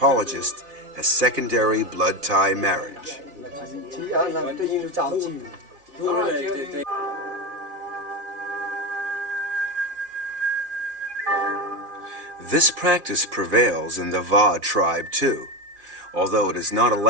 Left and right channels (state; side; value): late; left; 4.1 ms